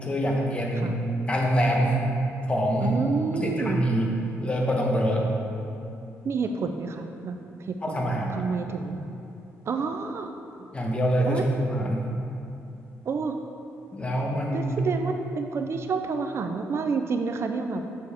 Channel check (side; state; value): both; normal; correlation 0.77